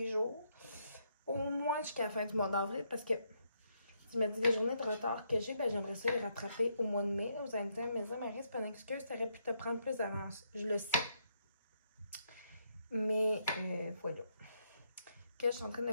jours. Au moins jusqu'à la fin du mois d'avril. Parce que, tu me dis les journées de retard que j'ai, ben j'aimerais ça les rattraper au mois de mai. Vous allez me dire, Marie, c'est pas une excuse, t'aurais pu te prendre plus d'avance. Je le sais. Mais voilà. Que je suis en train de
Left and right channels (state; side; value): inverted; both; correlation -0.76